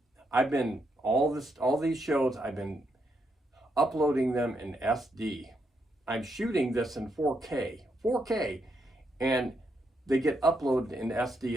I've been all these shows, I've been uploading them in SD. I'm shooting this in 4K, and they get uploaded in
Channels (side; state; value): both; normal; correlation 0.79